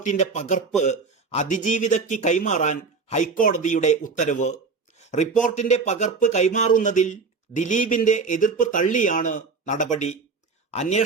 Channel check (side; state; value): left; quieter; 4.6 dB